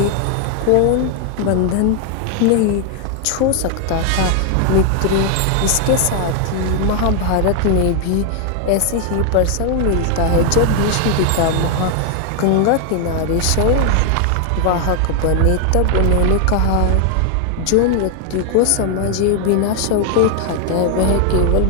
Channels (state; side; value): different; both; correlation 0.00